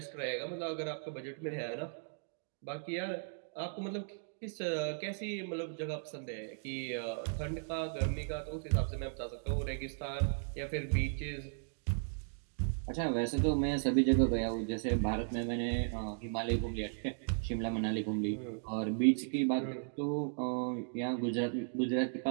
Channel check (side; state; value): left; silent; digital silence